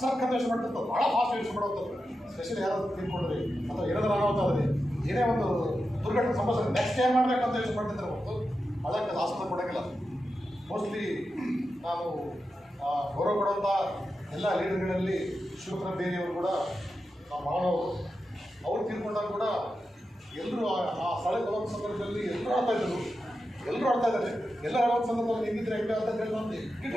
ಸರ್ಕಾರ ಯೋಚನೆ ಮಾಡ್ತಿರ್ತದೆ. ಭಾಳ ಫಾಸ್ಟ್ ಯೋಚನೆ ಮಾಡುವಂಥದ್ದು. ಸ್ಪೆಷಲಿ ಯಾರಾದ್ರು ತಿಳ್ಕೊಂಡ್ರಿ ಅಥವಾ ಏನಾದರೂ ಅನಾಹುತ ಏನೇ ಒಂದು ದುರ್ಘಟನೆ ಸಂಭವಿಸಿದ್ರೆ ನೆಕ್ಸ್ಟ್ ಏನ್ ಮಾಡಬೇಕಂತ ಯೋಚನೆ ಮಾಡ್ತಿದ್ರೆ ಹೊರತು ಅದಕ್ಕೆ ಆಸ್ಪತ್ರೆ ಕೊಡೋಂಗಿಲ್ಲ. ಮೋಸ್ಟ್ಲಿ ನಾನು ಗೌರವ ಕೊಡುವಂಥ ಎಲ್ಲ ಲೀಡರ್ಗಳಲ್ಲಿ ಶಿವಕುಮಾರ ಬೇರೆಯವರು ಕೂಡ ನಮ್ಮ ಮಾನವರು ಅವ್ರು ತೀರ್ಕೊಂಡಾಗ ಕೂಡ ಎಲ್ಲರೂ ಆ ಸ್ಥಳಕ್ಕೆ ಹೋಗೋ ಸಂದರ್ಭದಲ್ಲಿ ಎಲ್ಲರೂ ಆಡ್ತಾ ಇದ್ದಾರೆ. ಎಲ್ಲರೂ ಆಡೋ ಸಂದರ್ಭದಲ್ಲಿ ಹೆಂಗಿದ್ರೆ ಹೆಂಗೆ ಅಂತ ಹೇಳಿ ನಾನು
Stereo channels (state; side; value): normal; both; correlation 0.90